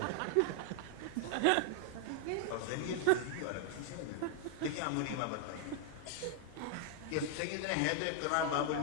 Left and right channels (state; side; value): different; both; correlation 0.00